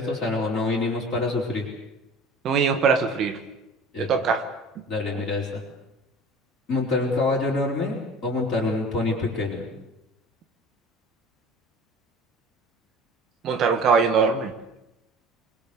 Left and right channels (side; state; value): both; normal; correlation 0.42